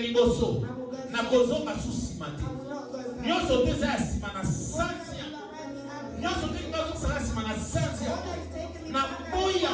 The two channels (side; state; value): both; identical; correlation 1.00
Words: Nakozonga susima te. I will not go back. Nyonso nyonso te za sima na santia nyonso te ngazo sala sima na santia na